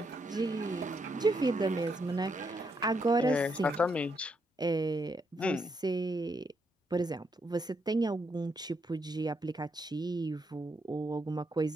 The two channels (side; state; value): both; normal; correlation 0.78